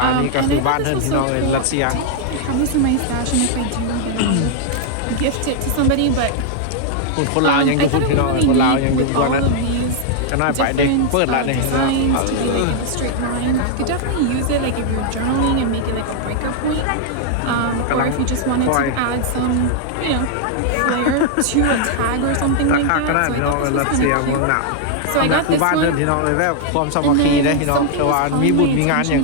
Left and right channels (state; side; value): different; both; correlation 0.00